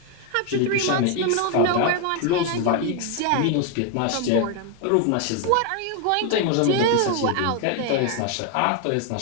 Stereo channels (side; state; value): both; different; correlation 0.01